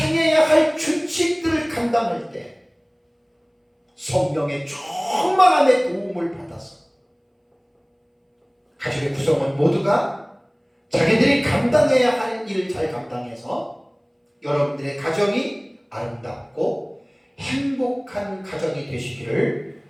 할 규칙들을 감당할 때 성령의 충만함의 도움을 받아서 가족의 구성원 모두가 자기들이 감당해야 할 일을 잘 감당해서 여러분들의 가정이 아름답고 행복한 가정이 되시기를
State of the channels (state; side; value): identical; both; correlation 1.00